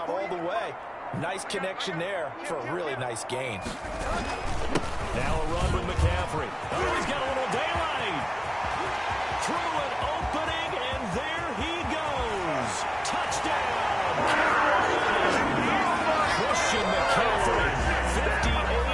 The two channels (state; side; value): identical; both; correlation 1.00